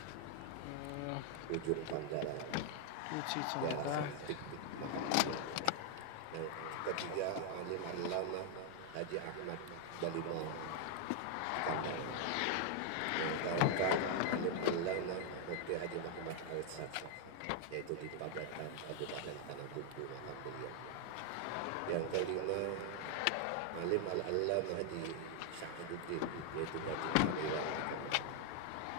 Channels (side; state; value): both; different; correlation 0.00